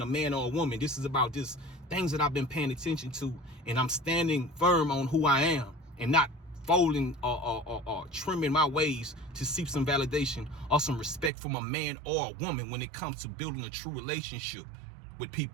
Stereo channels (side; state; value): left; drops out; at 11.3 s